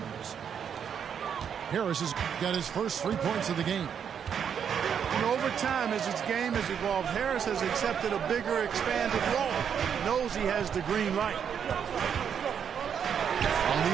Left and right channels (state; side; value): quieter; left; 7.8 dB